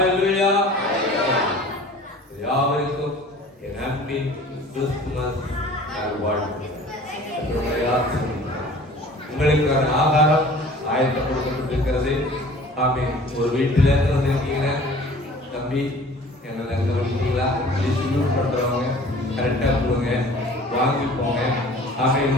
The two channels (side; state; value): both; normal; correlation 0.47